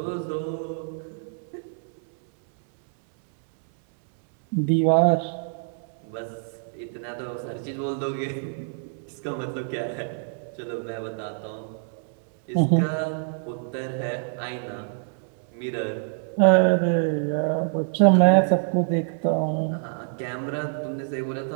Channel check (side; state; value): left; silent; 60 dB below the other